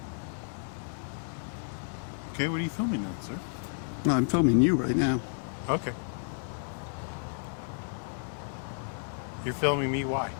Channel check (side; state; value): right; silent; digital silence